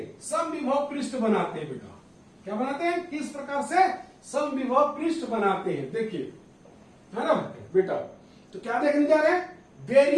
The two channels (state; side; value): identical; both; correlation 1.00